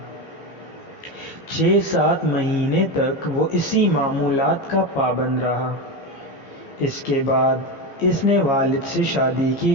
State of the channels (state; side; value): late; right; 15 ms